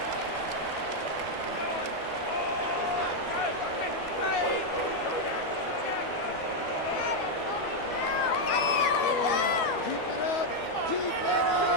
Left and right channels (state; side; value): late; right; 12 ms